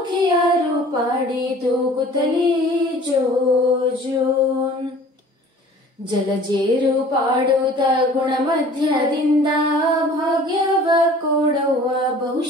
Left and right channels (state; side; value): normal; both; correlation 0.48